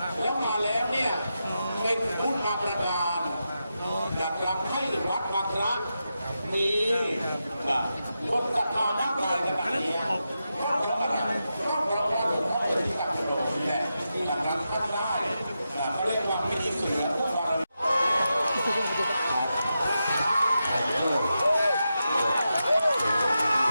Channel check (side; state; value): both; inverted; correlation -0.88